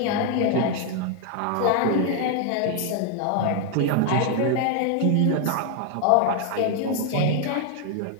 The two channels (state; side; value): different; both; correlation 0.00